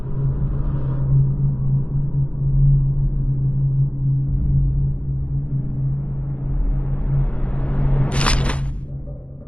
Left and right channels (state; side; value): late; right; 0.061 ms